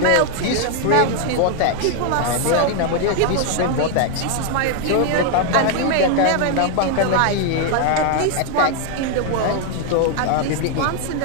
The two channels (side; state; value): both; different; correlation 0.00